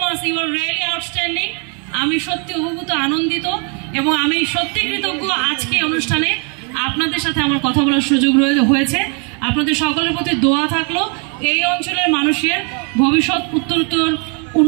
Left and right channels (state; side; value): quieter; left; 36.1 dB